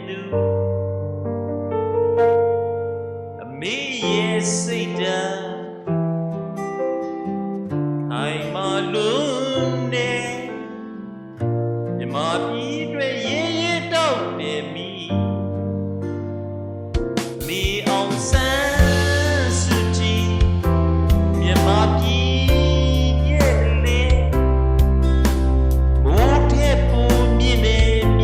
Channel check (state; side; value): identical; both; correlation 1.00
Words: သူအမေရဲ့စိတ်ဓာတ်အိမ်မလုံးနဲ့မြမပြည်အတွက်ရဲရဲတောက်နေမိမေအောင်ဆန်းစုကြည်မြမပြည်ရဲ့လေမိုးထဲပူမြင့်နေမ